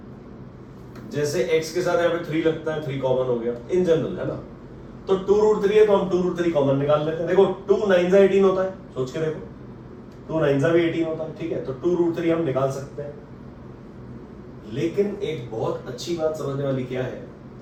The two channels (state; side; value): identical; both; correlation 1.00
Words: जैसे x के साथ यहाँ पे 3 लगता है, 3 कॉमन हो गया इन जनरल, है ना। तो 2 रूट 3 है तो हम 2 रूट 3 कॉमन निकाल लेते हैं। देखो 2 9 18 होता है, सोच के देखो, 2 9 भी 18 होता है, ठीक है। तो 2 रूट 3 हम निकाल सकते हैं। लेकिन एक बहुत अच्छी बात समझने वाली क्या है,